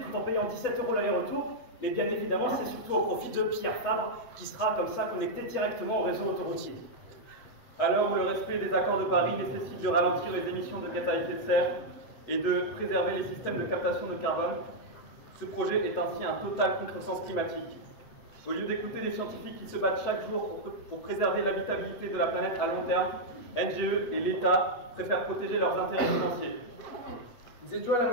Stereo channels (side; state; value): right; late; 8.1 ms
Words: en payant 17 € l'aller-retour. Mais bien évidemment, c'est surtout au profit de Pierre Fabre qui sera comme ça connecté directement au réseau autoroutier. À l'heure où le respect des accords de Paris nécessite de ralentir les émissions de gaz à effet de serre et de préserver les systèmes de captation de carbone, ce projet est ainsi un total contresens climatique. Au lieu d'écouter les scientifiques qui se battent chaque jour pour préserver l'habitabilité de la planète à long terme, NGE et l'État préfèrent protéger leurs intérêts financiers. Nous étions à